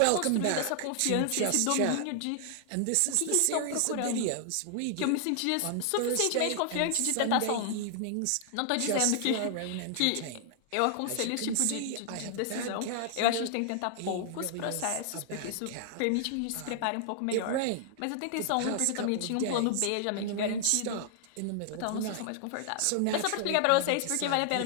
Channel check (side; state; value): both; different; correlation 0.00